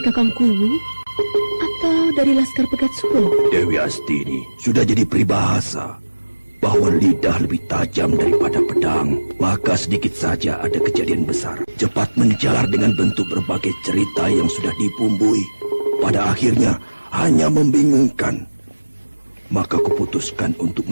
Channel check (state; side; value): inverted; both; correlation -1.00